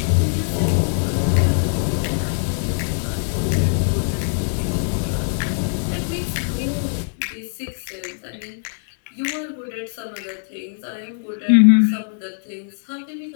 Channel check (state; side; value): silent; right; digital silence